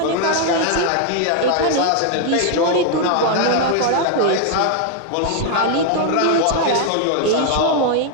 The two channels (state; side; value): different; both; correlation 0.00